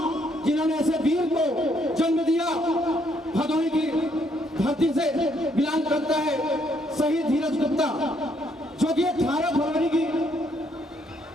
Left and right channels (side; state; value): both; normal; correlation 0.71